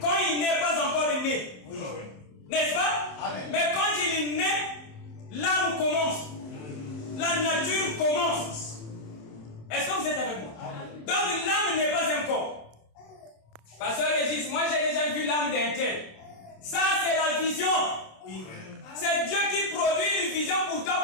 Quand il n'est pas encore né. Oui. N'est-ce pas? Amen. Mais quand il est né, l'âme commence. La nature commence. Est-ce que vous êtes avec moi? Amen. Donc l'âme n'est pas un corps. Pasteur Régis, moi j'ai déjà vu l'âme d'un tel. Ça c'est la vision. C'est Dieu qui produit une vision pour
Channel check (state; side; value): late; right; 27 ms